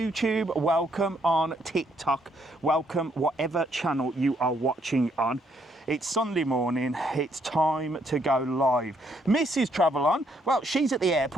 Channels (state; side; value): normal; both; correlation 0.71